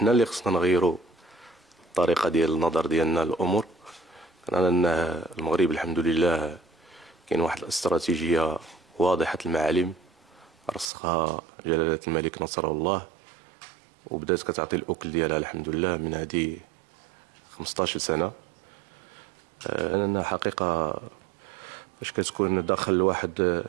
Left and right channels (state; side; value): drops out; left; at 10.9 s